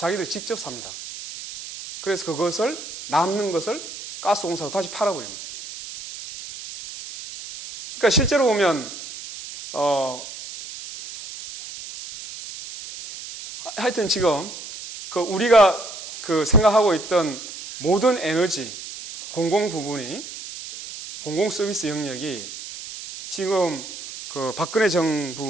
직접 삽니다. 그래서 그것을 남는 것을 가스공사로 다시 팔아버리는 거예요. 그러니까 실제로 보면 하여튼 지금 그 우리가 그 생각하고 있던 모든 에너지 공공 부분이 공공 서비스 영역이 지금 그 박근혜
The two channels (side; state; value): right; noise; hiss, 11 dB below the sound